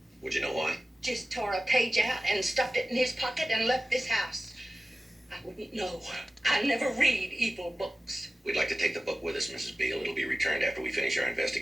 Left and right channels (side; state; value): both; normal; correlation 0.96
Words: Would you know why? Just tore a page out and stuffed it in his pocket and left this house. I wouldn't know. I never read evil books. We'd like to take the book with us, Mrs. Beale. It'll be returned after we finish our